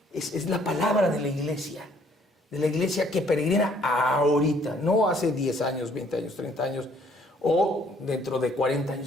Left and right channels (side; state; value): both; normal; correlation 0.62